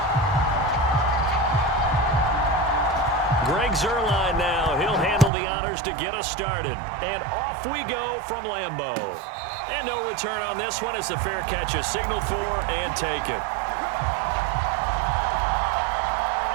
Greg Zuerlein now. He'll handle the honors to get us started. And off we go from Lambeau. And no return on this one as the fair catch is signaled for and taken.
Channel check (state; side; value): drops out; left; at 5.3 s